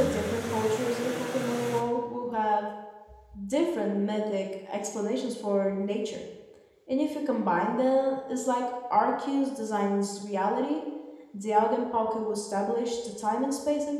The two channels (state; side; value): identical; both; correlation 1.00